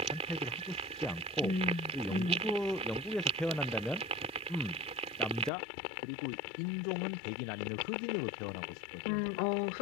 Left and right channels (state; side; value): drops out; right; at 5.5 s